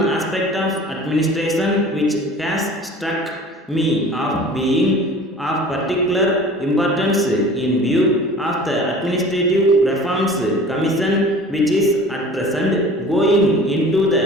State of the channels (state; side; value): normal; both; correlation 0.43